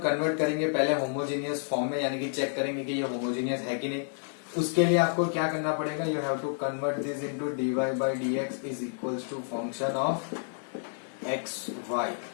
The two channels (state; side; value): silent; right; digital silence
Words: करेंगे पहले होमोजीनियस फॉर्म में, यानी कि चेक करेंगे कि ये होमोजीनियस है कि नहीं. उसके लिए आपको क्या करना पड़ेगा, you have to convert this into d y by D x is equals to function of x y.